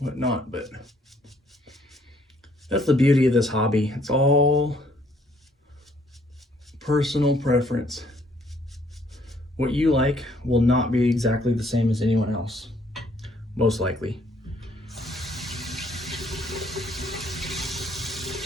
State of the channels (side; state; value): both; normal; correlation 0.65